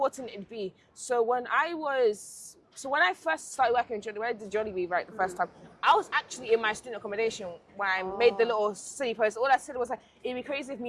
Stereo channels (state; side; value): identical; both; correlation 1.00